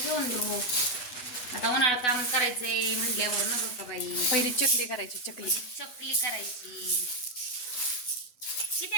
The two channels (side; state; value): right; late; 7.1 ms